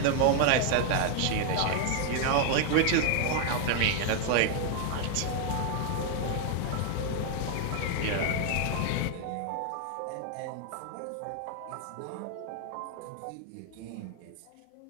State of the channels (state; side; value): different; both; correlation 0.00